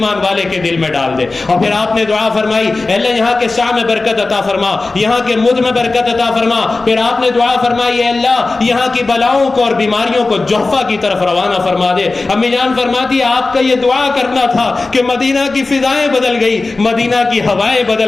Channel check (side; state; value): right; quieter; 3.5 dB